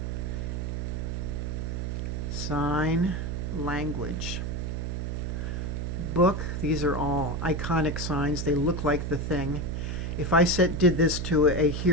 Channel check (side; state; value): right; noise; hum, 2 dB below the sound